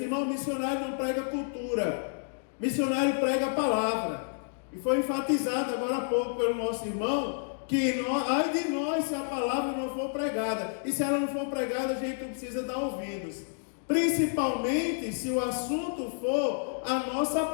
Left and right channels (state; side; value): silent; right; digital silence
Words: irmão, missionário não prega cultura, missionário prega a palavra. E foi enfatizado agora há pouco pelo nosso irmão, que ai de nós se a palavra não for pregada. E se ela não for pregada, a gente precisa dar ouvidos. Principalmente se o assunto for a nossa